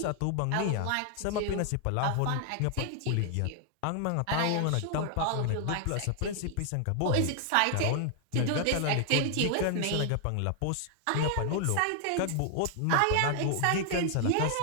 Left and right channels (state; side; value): different; both; correlation 0.00